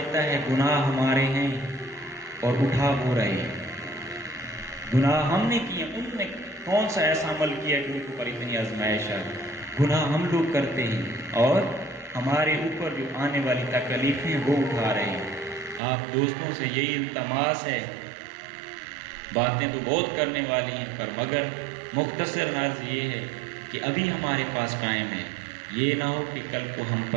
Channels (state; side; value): drops out; left; at 15.8 s